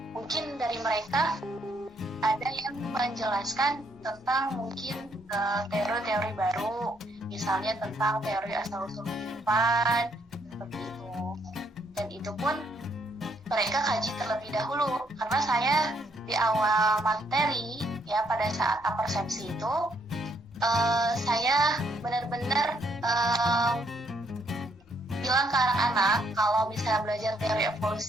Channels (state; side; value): normal; both; correlation 0.72